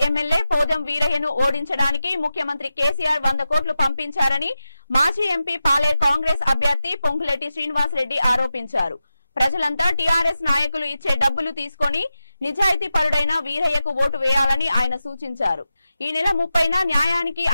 MLA Podem వీరయ్యను ఓడించడానికి ముఖ్యమంత్రి కేసీఆర్ 100 కోట్లు పంపించారని మాజీ ఎంపీ పాలేరు కాంగ్రెస్ అభ్యర్థి పొంగులేటి శ్రీనివాసరెడ్డి ఆరోపించారు. ప్రజలంతా టీఆర్ఎస్ నాయకులు ఇచ్చే డబ్బులు తీసుకొని నిజాయితీ పరుడైన వీరయ్యకు ఓటు వేయాలని ఆయన సూచించారు. ఈ నెల 30న న్యాయానికి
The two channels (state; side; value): inverted; both; correlation -0.91